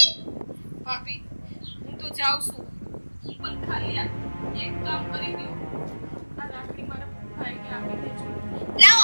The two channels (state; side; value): inverted; both; correlation -1.00